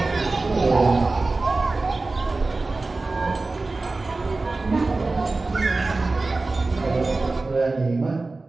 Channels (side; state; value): left; quieter; 3.4 dB